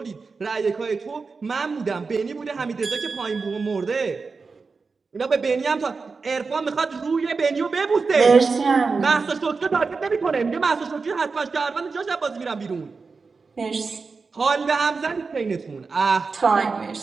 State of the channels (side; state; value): left; quieter; 4.6 dB